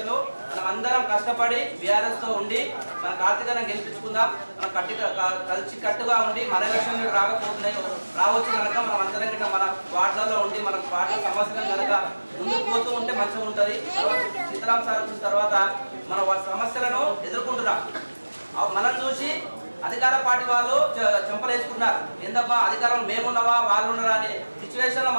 లో మనం అందరం కష్టపడి బీఆర్ఎస్ తో ఉండి మన కార్తీకను గెలిపించుకుందాం. మనం కలిసి కట్టుగా ఉండి మన ఎలక్షన్ రాకపోతున్నాయి రావచ్చు కనుక మనం అందరం గిట్ట మన వార్డులలో ఉండి మన పార్టీ సమస్యలను కనుక ముందుకు పోతూ ఉంటే మంచిగా ఉంటుంది. సీతారాం సార్ వచ్చిన తర్వాత మన సమస్యలను ఎదుర్కొంటున్నాం. మనం చూసి అధికార పార్టీ వాళ్ళు చెంపలేసుకున్నారు. ఏందబ్బా అధికారం మేమున్నావా వాళ్ళు ఉన్నారా అనే సిచ్యువేషన్ లో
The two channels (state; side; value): inverted; both; correlation -1.00